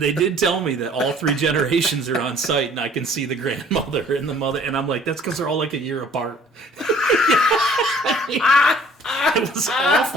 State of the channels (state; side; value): normal; both; correlation 0.55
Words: tell me that all 3 generations are on site, and I can see the grandmother and the mother, and I'm like, that's because they're all like a year apart. It was